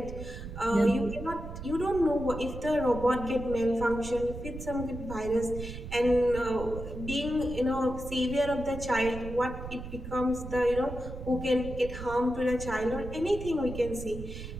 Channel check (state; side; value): noise; right; rumble, 10 dB below the sound